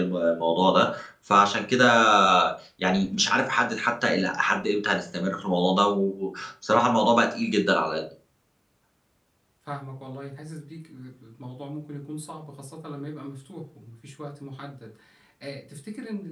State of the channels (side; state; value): both; identical; correlation 1.00